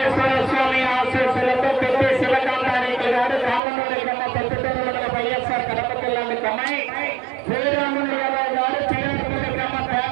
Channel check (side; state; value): left; drops out; at 3.6 s